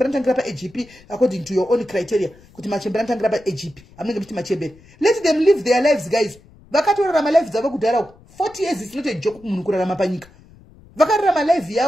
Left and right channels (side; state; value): left; noise; rumble, 25 dB below the sound